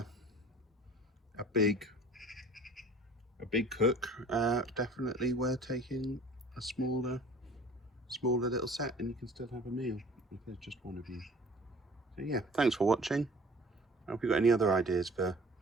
a big cook, definitely worth taking a smaller little set, and you can still have a meal if there's just one of you. So yeah, thanks for watching. If you've got any other ideas for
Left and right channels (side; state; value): both; normal; correlation 0.48